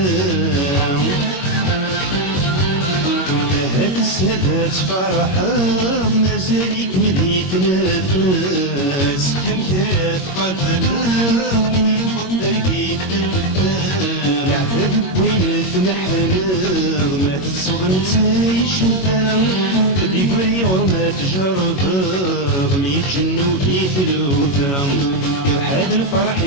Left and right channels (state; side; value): late; right; 22 ms